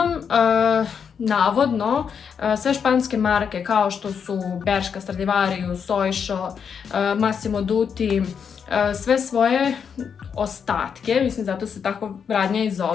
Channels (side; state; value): right; quieter; 6.9 dB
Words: navodno, sve španske marke kao što su Bershka, Stradivarius, Oysho, Massimo Dutti, sve svoje ostatke, mislim zato se tako radnja i